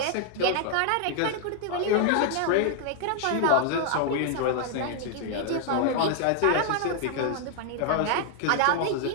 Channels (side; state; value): both; different; correlation 0.00